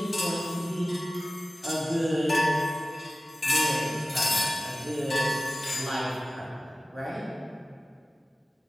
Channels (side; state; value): both; normal; correlation 0.96